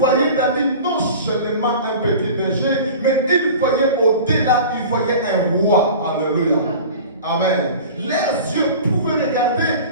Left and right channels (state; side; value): inverted; both; correlation -0.38